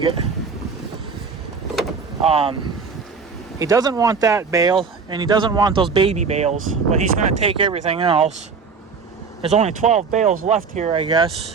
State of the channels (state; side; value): quieter; left; 5.3 dB